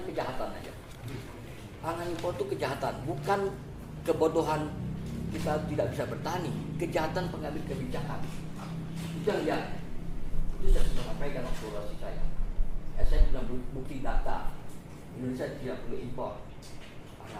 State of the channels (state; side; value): identical; both; correlation 1.00